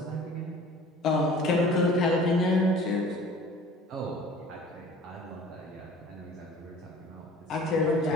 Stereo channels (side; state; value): both; normal; correlation 0.46